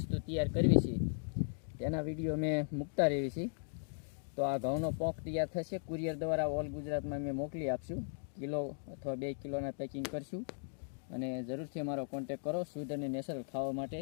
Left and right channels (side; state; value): right; silent; digital silence